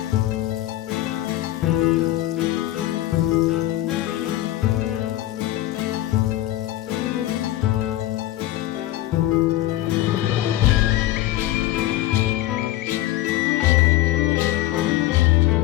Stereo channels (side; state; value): right; quieter; 15.0 dB